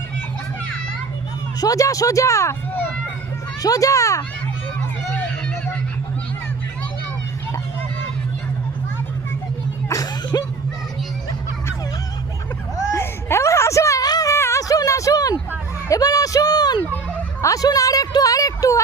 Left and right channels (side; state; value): left; quieter; 4.4 dB